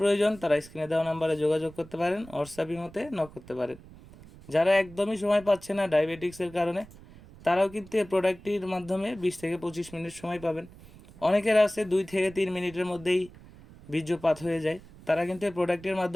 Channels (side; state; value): right; noise; rumble, 20 dB below the sound